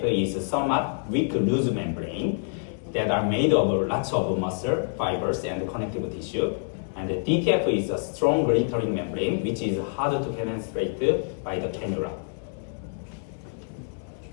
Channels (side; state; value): right; silent; digital silence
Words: is somewhat weak loose membrane that are made of lots of muscle, fibers, and connective tissue. And the DTF is a strong glittering membrane which is hard to penetrate by the cannula.